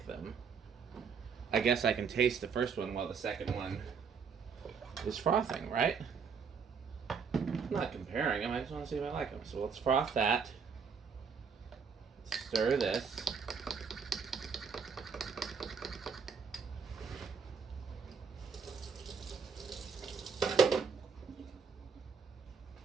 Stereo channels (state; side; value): quieter; left; 6.0 dB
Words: them. I guess I can taste the first one while the second one is frothing, right? I'm not comparing them, I just want to see if I like them. So let's froth that. Stir this.